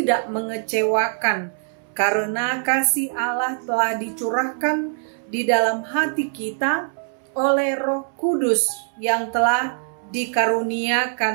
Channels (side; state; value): left; silent; 64 dB below the other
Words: mengecewakan, karena kasih Allah telah dicurahkan di dalam hati kita oleh Roh Kudus yang telah